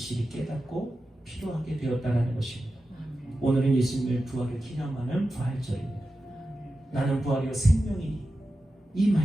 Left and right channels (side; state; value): both; normal; correlation 0.92